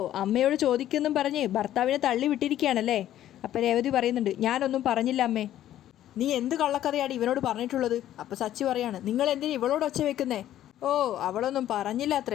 അമ്മയോട് ചോദിക്കുന്നും പറഞ്ഞ് ഭർത്താവിനെ തള്ളി വിട്ടിരിക്കുകയാണല്ലേ? അപ്പം രേവതി പറയുന്നുണ്ട്, ഞാനൊന്നും പറഞ്ഞില്ല അമ്മേ. നീ എന്ത് കള്ളക്കഥയാണ് ഇവനോട് പറഞ്ഞിട്ടുള്ളത്? അപ്പം സച്ചി പറയാണ്, നിങ്ങൾ എന്തിനാ ഇവളോട് ഒച്ച വെക്കുന്നേ? ഓ, അവളൊന്നും പറഞ്ഞില്ല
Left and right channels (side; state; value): right; quieter; 12.3 dB